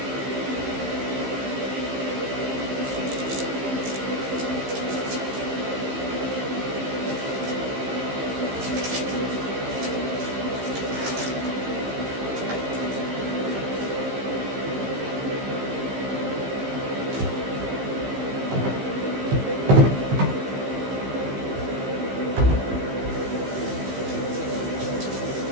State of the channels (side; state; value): left; late; 15 ms